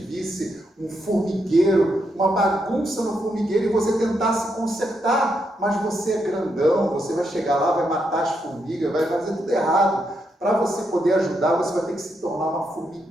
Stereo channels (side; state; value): both; normal; correlation 0.80